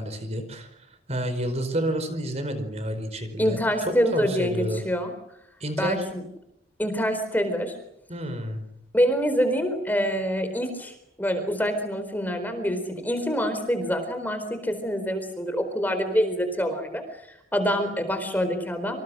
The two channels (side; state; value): both; normal; correlation 0.70